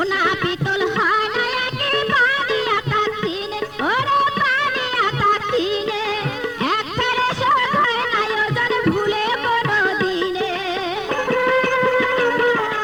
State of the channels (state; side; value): identical; both; correlation 1.00